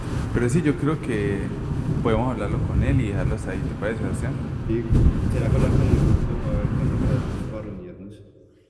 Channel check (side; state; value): both; identical; correlation 1.00